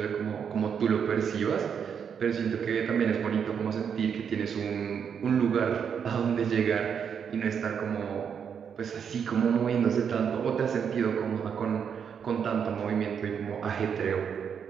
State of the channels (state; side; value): quieter; left; 7.3 dB